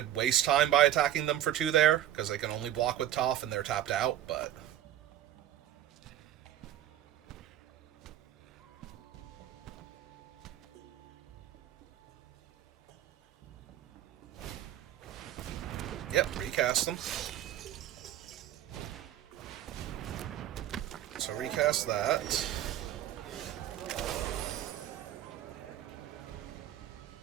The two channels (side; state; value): left; quieter; 12.3 dB